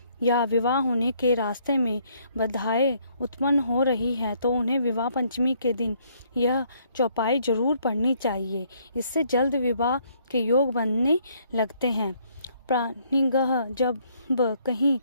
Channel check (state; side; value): inverted; both; correlation -0.67